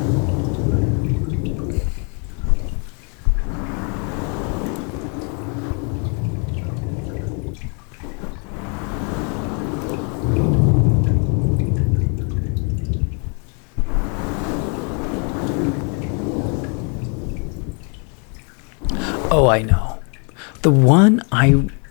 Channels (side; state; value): right; quieter; 37.4 dB